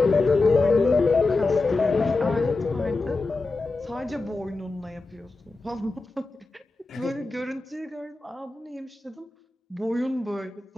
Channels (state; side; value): quieter; right; 3.4 dB